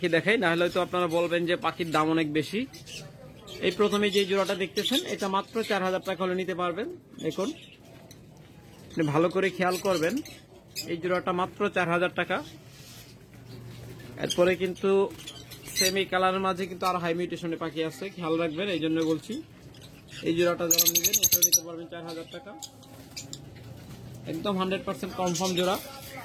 দেখাই, না হলে তো আপনারা বলবেন যে পাখির দাম অনেক বেশি। এই প্রথমে যে জোড়াটা দেখতেছেন এটা মাত্র 4,000 টাকা হলে নিতে পারবেন দেখুন। ভালো করে খেয়াল করবেন, এই জোড়াটা মাত্র 4,000 টাকা। এরপরে কিন্তু সেমি কালারের মাঝে কিন্তু আর হাই মিউটেশনে পাখি আছে, খেয়াল রাখবেন, এই জন্য বলছি। এই জোড়াটা যারা নেবেন এটাও নিতে পারবেন 4,000 টাকা। একদম 100% কনফার্ম জোড়া,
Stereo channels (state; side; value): identical; both; correlation 1.00